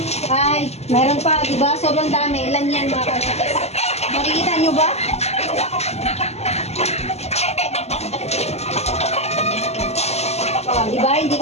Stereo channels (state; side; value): late; right; 0.31 ms